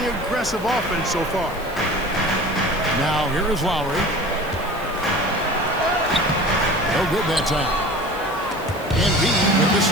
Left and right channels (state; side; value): noise; left; hiss, 21 dB below the sound